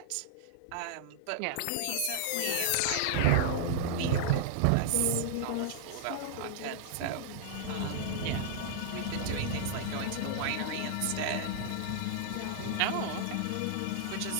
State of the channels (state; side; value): different; both; correlation -0.01